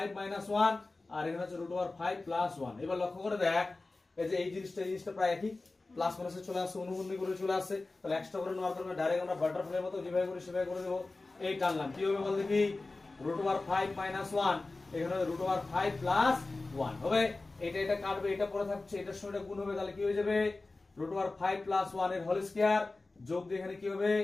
মাইনাস 1, আর এখানে হচ্ছে √5 প্লাস 1। এবার লক্ষ্য করে দেখ, এই যে এই জিনিসটা প্রায় একই, প্লাস মাইনাসে চলে আসছে, অনুবন্ধী করে চলে আসছে, তাহলে এক্সট্রা করে নেওয়ার কারণে ডাইরেক্ট আমরা বাটারফ্লাইয়ের মতো যেভাবে করে সেভাবে করে দেবো। এই টানলাম, কি হবে বল দেখি? √5 মাইনাস 1, এখানে √5 প্লাস 1 হবে। এটা কাটবে, এটা পরে থাকছে, এটার সঙ্গে গুণ হবে, তাহলে কি হয়ে যাবে? √5 প্লাস 1 এর হোল স্কয়ার যোগ দিয়ে এখানে কি হবে?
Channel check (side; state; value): right; quieter; 3.3 dB